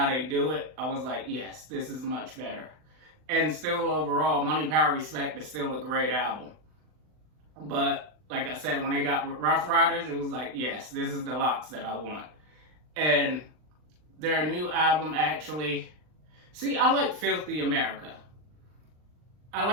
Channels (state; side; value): late; left; 39 ms